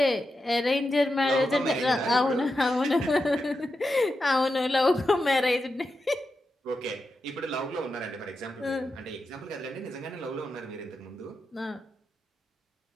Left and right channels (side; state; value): both; normal; correlation 0.88